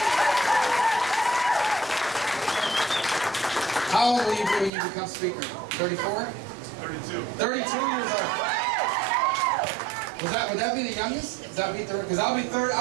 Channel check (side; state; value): left; drops out; at 4.7 s